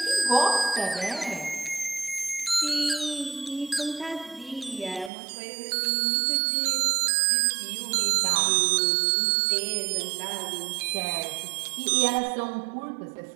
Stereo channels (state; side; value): drops out; left; at 5.1 s